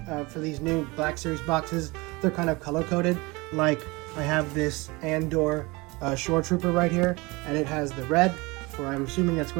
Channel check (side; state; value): left; quieter; 24.2 dB